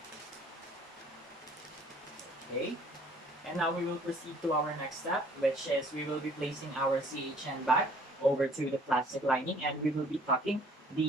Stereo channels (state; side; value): normal; both; correlation 0.57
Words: Okay, and now we will proceed to our next step, which is we will be placing our CHN bag over to the plastic lining, and we will be tucking